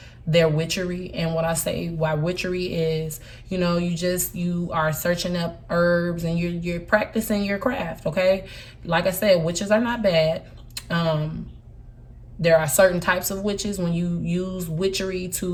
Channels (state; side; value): identical; both; correlation 1.00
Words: their witchery. And what I say why witchery is, you know, you are searching up herbs and you're practicing your craft, okay? Like I said, witches are not bad. there are certain types of witches. When you use witchery